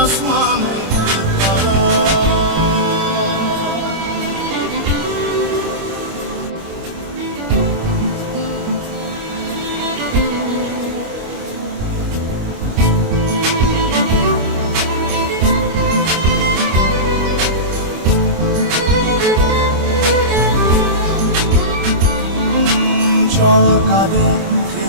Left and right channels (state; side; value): late; left; 25 ms